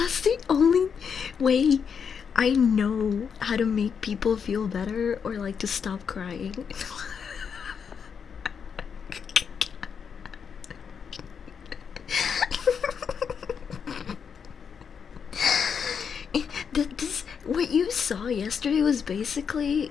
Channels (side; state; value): right; quieter; 6.7 dB